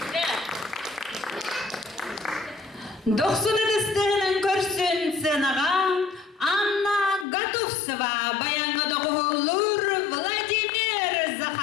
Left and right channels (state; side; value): drops out; right; at 7.2 s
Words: Doksun edistihinin görsün senağa, Anna Gatovsova, bayanı doğulur Vladimir